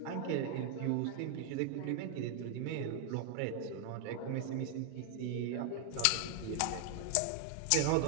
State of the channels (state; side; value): different; both; correlation 0.00